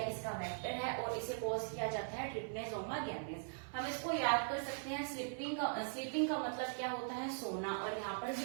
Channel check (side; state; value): left; silent; 51 dB below the other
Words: इसका वेक्टर है और इसे कोज किया जाता है ट्रिप्नेजोमा गैम्बियंस। हम इसको याद कर सकते हैं, स्लीपिंग का मतलब क्या होता है, सोना, और यहाँ पर